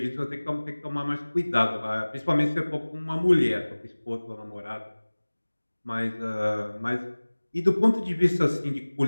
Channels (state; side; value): inverted; both; correlation -1.00